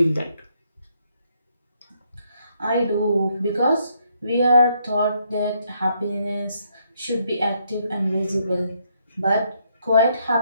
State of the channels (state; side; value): inverted; both; correlation -0.73